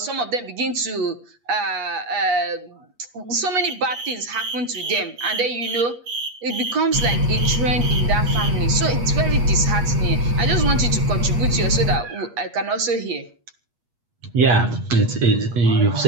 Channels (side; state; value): left; late; 8.4 ms